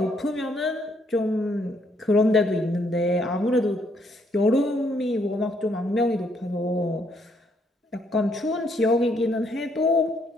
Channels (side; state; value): both; normal; correlation 0.71